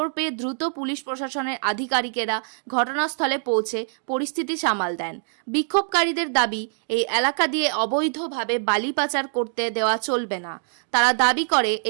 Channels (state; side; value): silent; left; 58 dB below the other